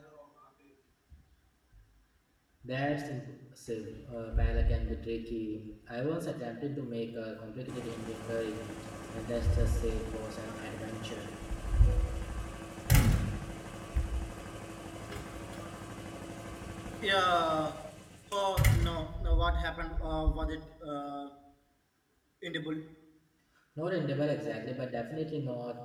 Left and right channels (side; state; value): both; identical; correlation 1.00